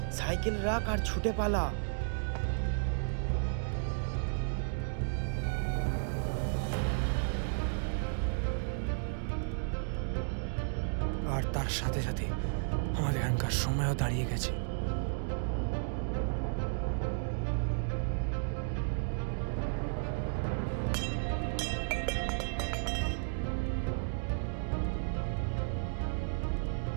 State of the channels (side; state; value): left; silent; digital silence